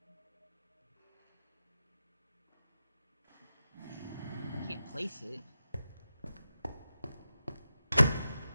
I can't place it.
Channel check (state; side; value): inverted; both; correlation -0.92